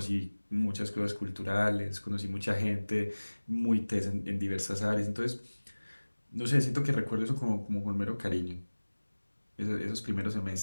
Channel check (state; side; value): inverted; both; correlation -1.00